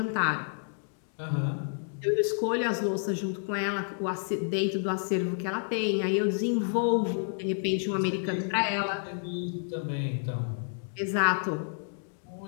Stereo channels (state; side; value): silent; right; digital silence